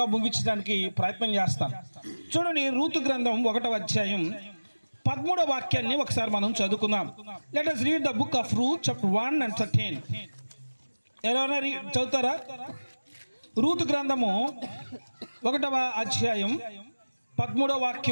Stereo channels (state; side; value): inverted; both; correlation -1.00